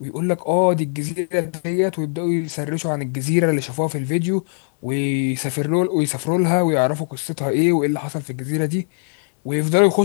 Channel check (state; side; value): silent; right; digital silence